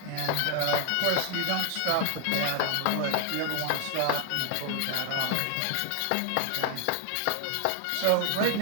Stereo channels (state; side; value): different; both; correlation 0.00